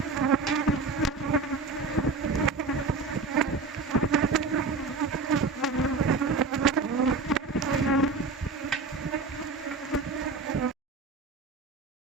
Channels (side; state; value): left; quieter; 4.2 dB